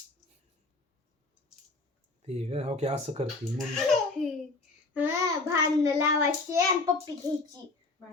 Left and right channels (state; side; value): quieter; right; 3.4 dB